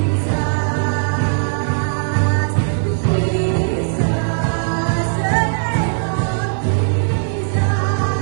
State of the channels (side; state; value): left; silent; 58 dB below the other